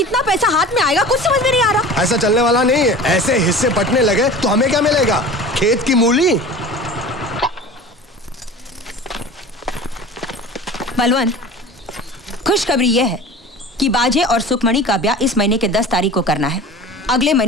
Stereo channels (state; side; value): normal; both; correlation 0.38